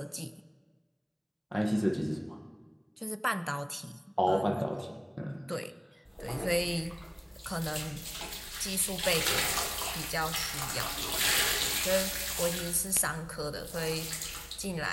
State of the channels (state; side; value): identical; both; correlation 1.00